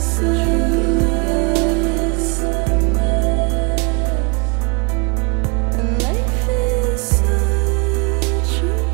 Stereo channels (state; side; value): quieter; left; 30.9 dB